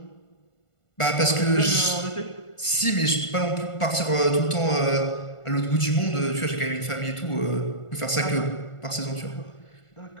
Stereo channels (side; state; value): right; late; 1.5 ms